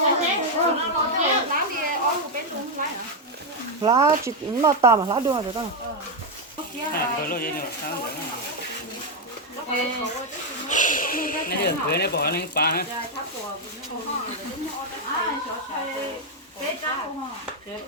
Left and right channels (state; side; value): normal; both; correlation 0.02